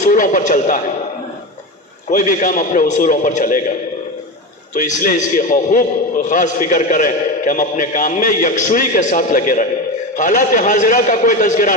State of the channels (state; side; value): normal; both; correlation 0.21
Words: پر چلتا ہے، کوئی بھی کام اپنے اصولوں پر چلے گا، تو اس لیے اس کی خوب خاص فکر کریں کہ ہم اپنے کام میں یکسوئی کے ساتھ لگے رہیں، حالات حاضرہ کا کوئی تذکرہ